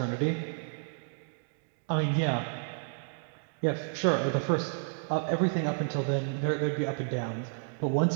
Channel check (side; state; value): left; silent; digital silence